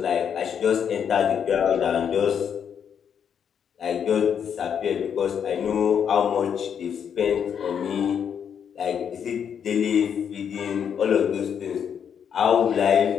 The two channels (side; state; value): right; quieter; 7.9 dB